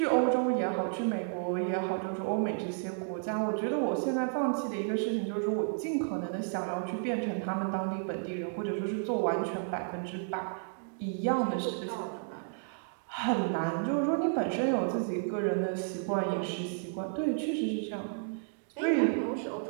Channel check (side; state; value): left; silent; digital silence